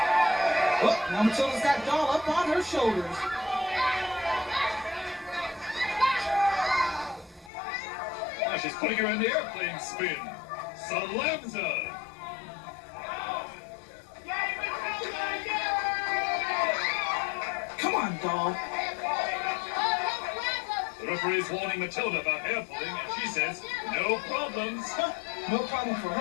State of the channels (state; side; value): drops out; right; at 7.5 s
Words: Oh, now Matilda's got doll up on her shoulders. Now she's putting her in the airplane spin. Slams her. Come on, doll. The referee's warning Matilda about hair pulling, and she says, no problems. No problem for